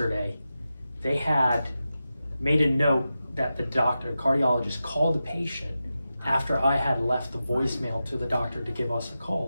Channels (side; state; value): both; inverted; correlation -0.92